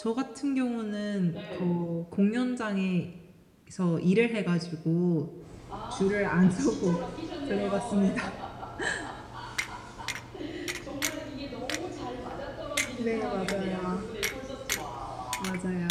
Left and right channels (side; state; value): both; identical; correlation 1.00